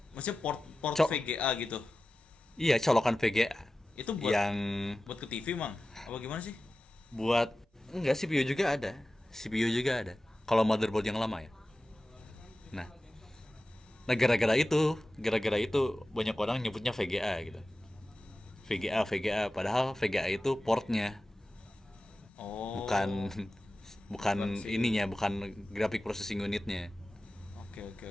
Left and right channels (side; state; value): both; normal; correlation 0.95